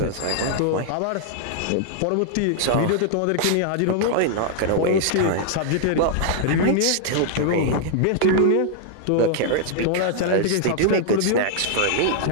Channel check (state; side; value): different; both; correlation -0.01